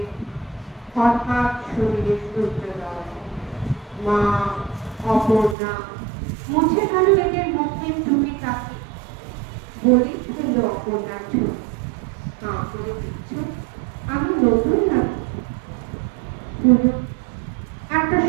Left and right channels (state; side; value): drops out; left; at 5.6 s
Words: হঠাৎ শরীরে সূর্যোদয়। মা অপর্ণা মুছে গেল এদের মুখের টুপি কাকে, বলি ফেলল অপর্ণার ছবি। হাঁ করে দিচ্ছ, আমি নতুন নাকি? একটা